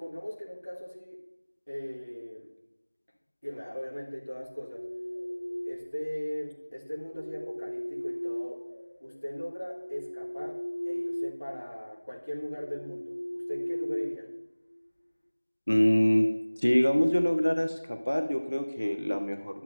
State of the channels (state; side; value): inverted; both; correlation -1.00